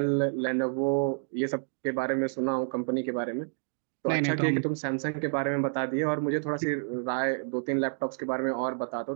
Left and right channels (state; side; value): silent; left; digital silence